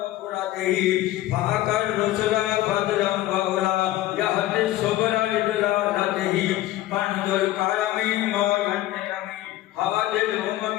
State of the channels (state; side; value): quieter; right; 15.3 dB